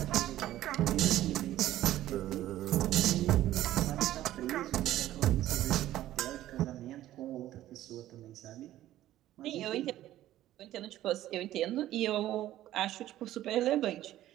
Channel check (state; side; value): quieter; left; 13.8 dB